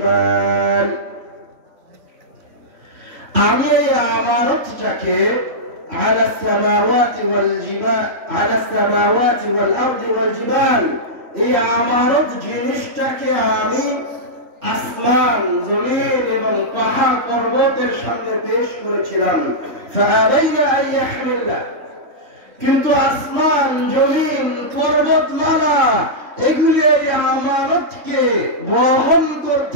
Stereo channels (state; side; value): late; left; 3.4 ms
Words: আমি এই আমানতটাকে على السماوات والجبال على السماوات والأرض والجبال এই আমানত জিনিসটাকে আমি আসমান জমিন এবং পাহাড় পর্বতের সামনে পেশ করেছিলাম। ফাআলাইনা আন ইয়াহমিলনা, কিন্তু আসমান জমিন পর্বতমালা এগুলি এই আমানতকে বহন